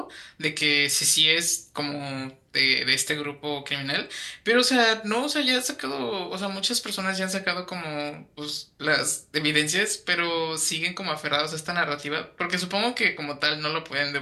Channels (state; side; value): identical; both; correlation 1.00